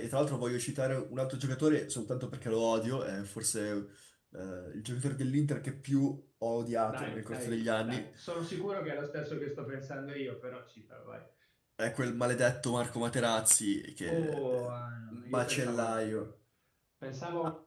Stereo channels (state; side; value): identical; both; correlation 1.00